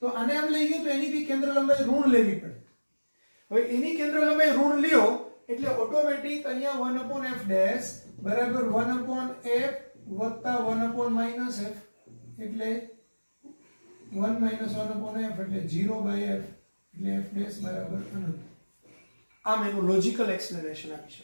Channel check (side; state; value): both; inverted; correlation -1.00